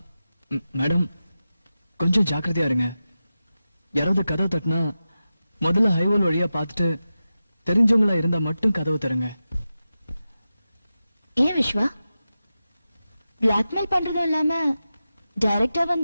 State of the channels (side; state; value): both; inverted; correlation -0.93